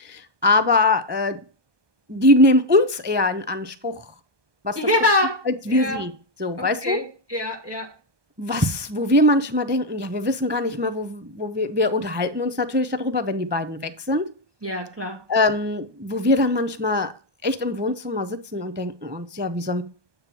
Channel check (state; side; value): late; left; 1.2 ms